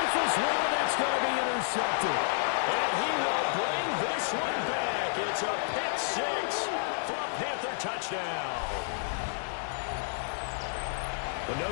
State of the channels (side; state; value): right; silent; digital silence